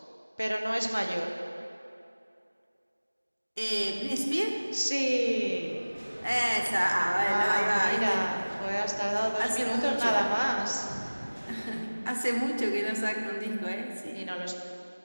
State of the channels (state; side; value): inverted; both; correlation -1.00